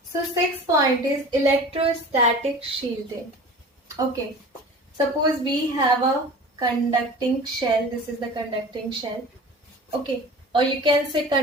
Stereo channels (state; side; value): normal; both; correlation 0.39